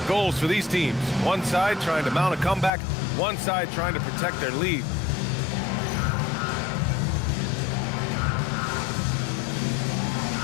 goals for these teams. One side trying to mount a comeback, one side trying to protect their lead.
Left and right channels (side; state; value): right; drops out; at 2.7 s